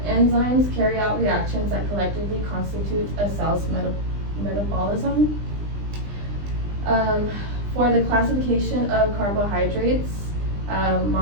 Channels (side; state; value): left; late; 20 ms